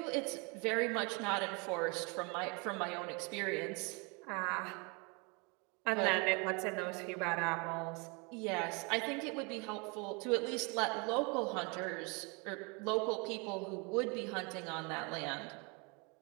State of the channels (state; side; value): quieter; left; 31.0 dB